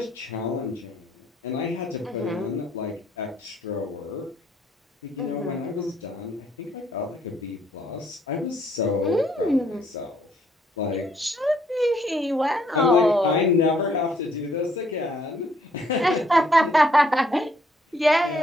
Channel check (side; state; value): both; normal; correlation 0.67